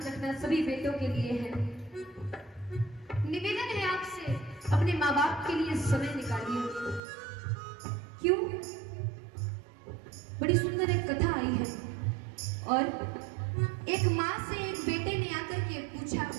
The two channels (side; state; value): left; drops out; at 7.0 s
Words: रखना सभी बेटों के लिए है, निवेदन है आपसे, अपने माँ बाप के लिए समय निकालिए। क्यों? बड़ी सुंदर एक कथा आई है और एक माँ से एक बेटे ने आकर के पूछा,